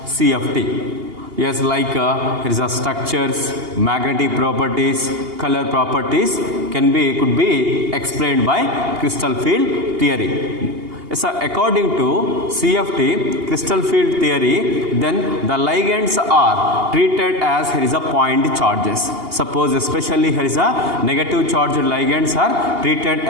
CFT. Yes, like here is a structures, magnetic properties, color properties could be explained by crystal field theory. So according to CFT, crystal field theory, then the ligands are treated as here is a point charges. Suppose especially here is a negative charged ligands are treated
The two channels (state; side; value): late; left; 2.8 ms